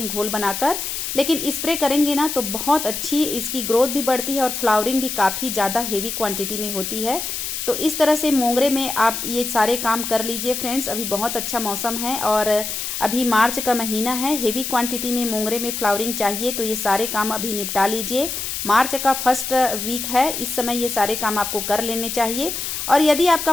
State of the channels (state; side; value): noise; left; hiss, 4 dB below the sound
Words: घोल बनाकर, लेकिन स्प्रे करेंगे ना तो बहुत अच्छी इसकी ग्रोथ भी बढ़ती है और फ्लावरिंग भी काफ़ी ज़्यादा हेवी क्वांटिटी में होती है। तो इस तरह से मोंगरे में आप ये सारे काम कर लीजिए फ्रेंड्स। अभी बहुत अच्छा मौसम है और अभी मार्च का महीना है। हेवी क्वांटिटी में मोंगरे में फ्लावरिंग चाहिए तो ये सारे काम अभी निपटा लीजिए। मार्च का फर्स्ट वीक है, इस समय ये सारे काम आपको कर लेने चाहिए। और यदि आपका